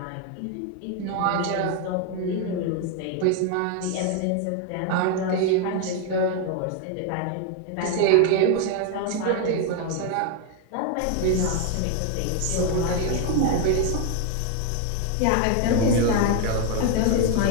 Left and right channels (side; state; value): both; different; correlation 0.01